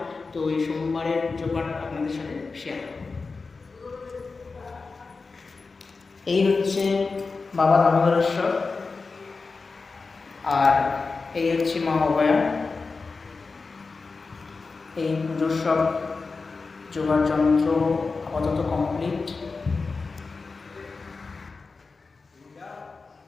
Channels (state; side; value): quieter; right; 4.2 dB